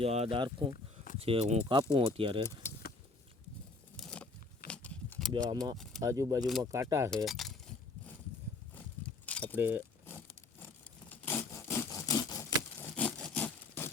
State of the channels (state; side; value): quieter; right; 3.4 dB